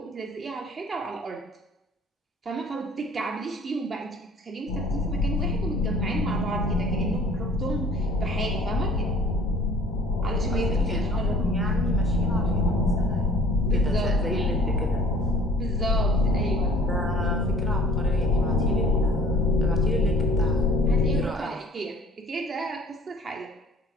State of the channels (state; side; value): normal; both; correlation 0.51